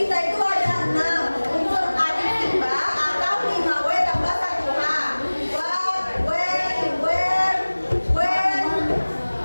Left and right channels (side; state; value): both; inverted; correlation -1.00